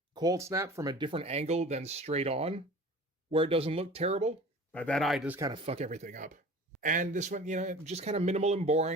Cold Snap from a different angle than straight on, where it doesn't look terrible. But that eye does kind of fuck everything up. And this one, just kind of minimal and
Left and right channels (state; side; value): normal; both; correlation 0.41